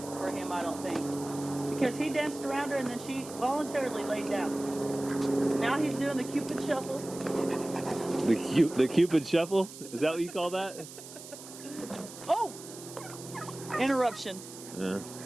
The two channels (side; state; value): right; noise; hiss, 14 dB below the sound